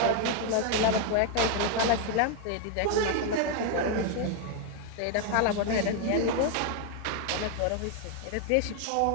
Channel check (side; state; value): both; different; correlation 0.00